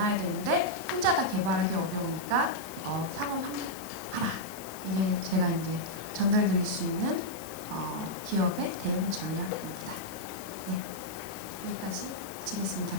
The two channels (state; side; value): noise; left; hiss, 14 dB below the sound